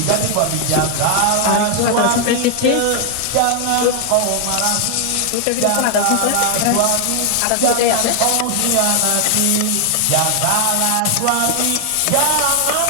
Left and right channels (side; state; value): both; different; correlation 0.00